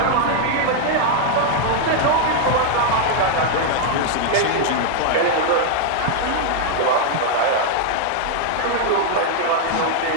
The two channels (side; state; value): both; different; correlation 0.00